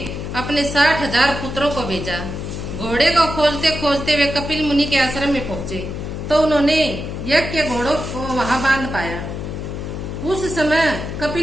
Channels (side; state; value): left; noise; hum, 6 dB below the sound